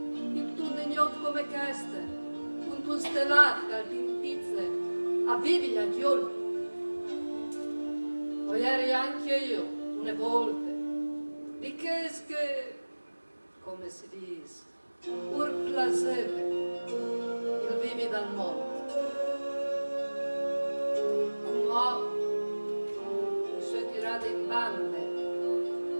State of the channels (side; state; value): both; inverted; correlation -1.00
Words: un ignot come questo, con un stellato che al pintizze, a vivi gli agioli. O ieri anche io, una volta, di che, come si dice, pur placeve, il vivi dal mondo. Come mi sono tirata in bande,